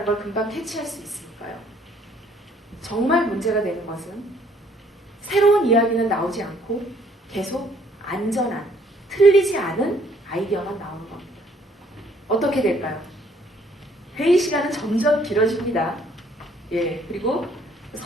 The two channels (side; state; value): both; normal; correlation 0.63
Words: 걸 금방 캐치할 수 있으니까요. 정말 문제가 되는 것은 새로운 이야기는 나오지 않고 계속 안전한, 틀리지 않은 아이디어만 나오는 겁니다. 어떻게 될까요? 회의 시간은 점점 길어집니다. 그리고